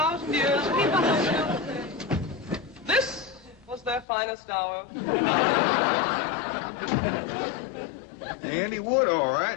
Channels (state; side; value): drops out; right; at 4.0 s